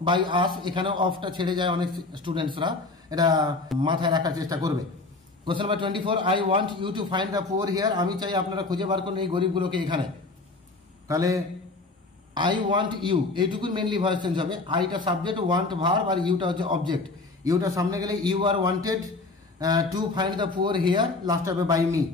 by us. এখানে অফটা ছেড়ে যায় অনেক স্টুডেন্টসরা, এটা মাথায় রাখার চেষ্টা করবে। Question number 24, I want you to find the poor here. আমি চাই আপনারা খুঁজে বার করুন এই গরিবগুলোকে এখানে। তাহলে আই ওয়ান্ট ইউ, এইটুকুই মেনলি ভয়েস চেঞ্জ হবে। আইটা সাবজেক্ট, ওয়ান্ট ভার্ব, আর ইউটা হচ্ছে অবজেক্ট। ইউটা সামনে গেলে you are wanted to find the poor here, last হবে by me.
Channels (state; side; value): quieter; right; 3.5 dB